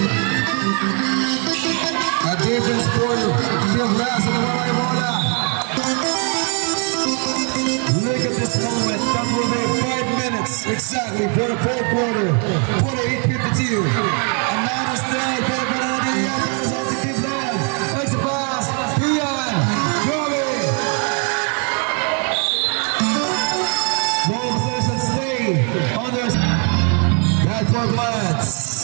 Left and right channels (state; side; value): quieter; left; 38.9 dB